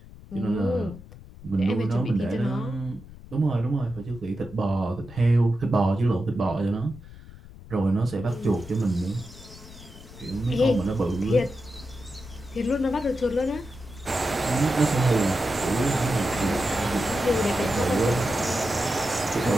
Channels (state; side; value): noise; left; rumble, 18 dB below the sound